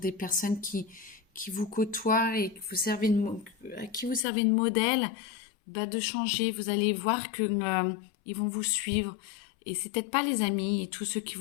des personnes qui vous côtoient et que à qui vous servez de modèle, bah, de changer. Vous allez voir que ils vont vous suivre. Et c'est peut-être pas les amis et tous ceux qui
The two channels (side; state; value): right; drops out; at 4.2 s